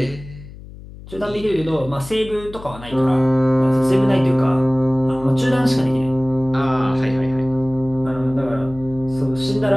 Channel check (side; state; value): left; noise; hum, 16 dB below the sound